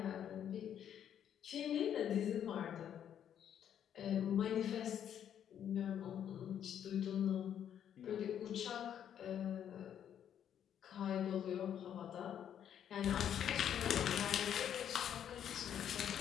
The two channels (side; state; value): right; quieter; 9.5 dB